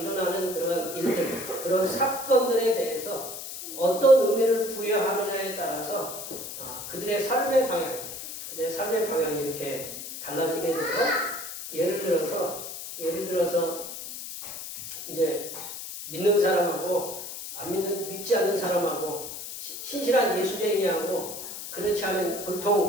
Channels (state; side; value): noise; left; hiss, 9 dB below the sound